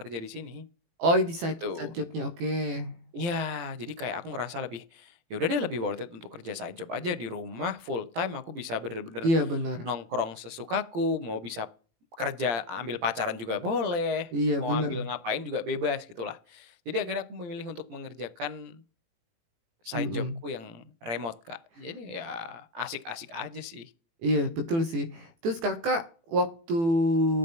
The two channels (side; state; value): left; late; 18 ms